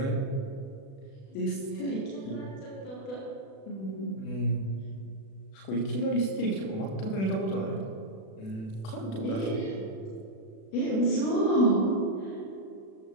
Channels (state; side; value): late; right; 36 ms